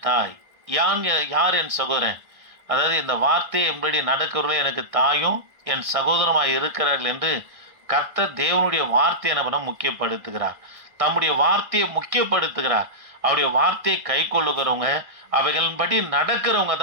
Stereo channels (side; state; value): left; late; 1.6 ms